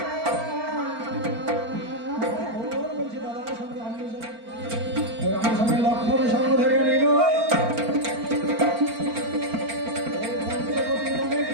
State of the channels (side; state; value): left; late; 4.4 ms